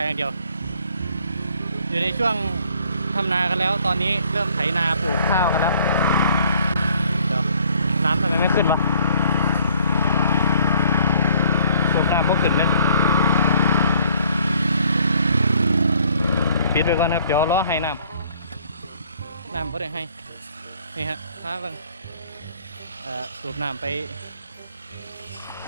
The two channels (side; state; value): both; inverted; correlation -0.61